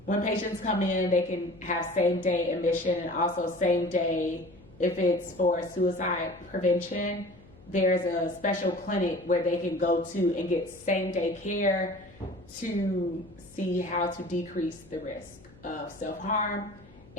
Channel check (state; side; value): noise; left; hum, 24 dB below the sound